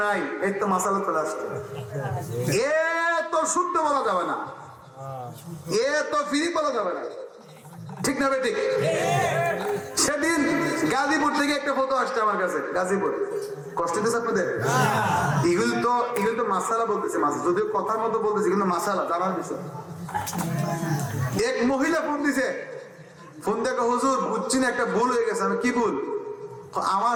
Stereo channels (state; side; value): identical; both; correlation 1.00